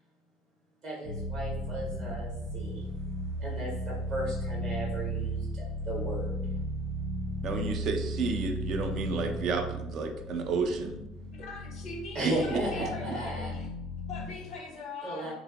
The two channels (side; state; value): both; normal; correlation 0.49